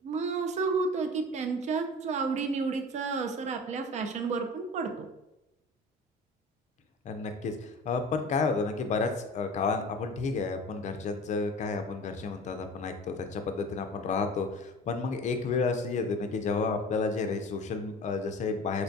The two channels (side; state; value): both; normal; correlation 0.38